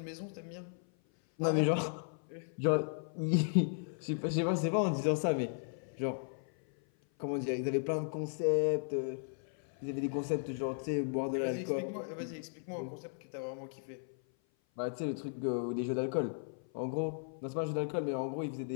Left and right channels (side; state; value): right; silent; 54 dB below the other